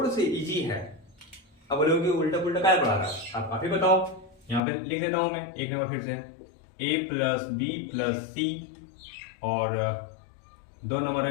से इजी है। अब बोलोगे उल्टा पुल्टा क्या पढ़ा रहा है, आप ही बताओ। यहाँ पे लिख देता हूं मैं एक नंबर फिर से, a प्लस बी प्लस सी और 2 नंबर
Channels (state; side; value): drops out; right; at 4.6 s